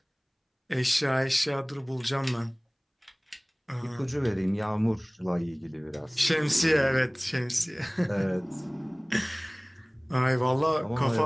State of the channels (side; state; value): both; identical; correlation 1.00